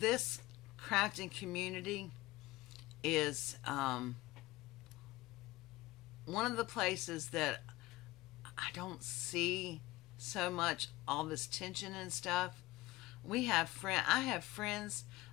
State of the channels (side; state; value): right; quieter; 19.3 dB